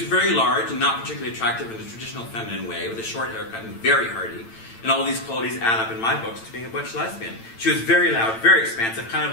large and not particularly attractive in the traditional feminine way, with a short haircut and very hardy. And all these qualities add up in my books to being a butch lesbian. She was very loud, very expansive, kind of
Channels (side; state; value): right; late; 8.9 ms